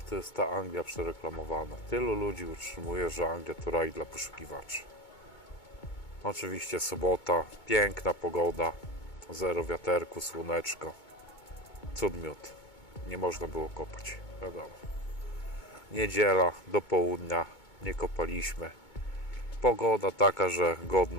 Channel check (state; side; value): late; right; 2.2 ms